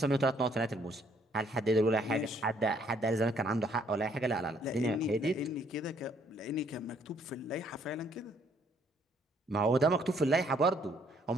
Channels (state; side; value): normal; both; correlation 0.66